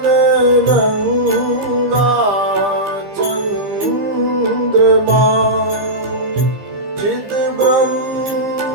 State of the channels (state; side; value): late; left; 15 ms